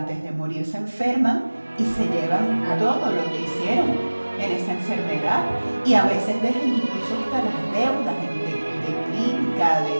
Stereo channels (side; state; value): both; inverted; correlation -1.00